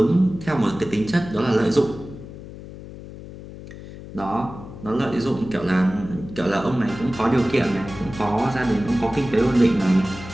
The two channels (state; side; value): noise; left; hum, 14 dB below the sound